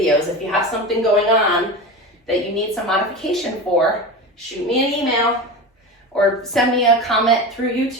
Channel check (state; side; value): normal; both; correlation 0.26